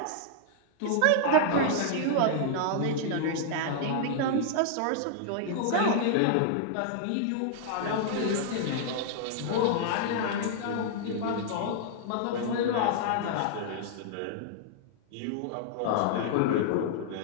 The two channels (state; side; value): different; both; correlation -0.01